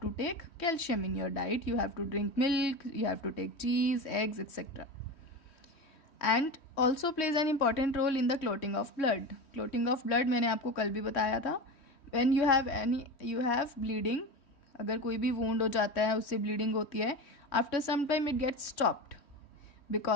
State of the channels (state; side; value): late; right; 3.1 ms